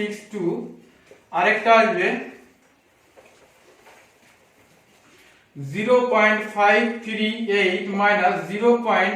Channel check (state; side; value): identical; both; correlation 1.00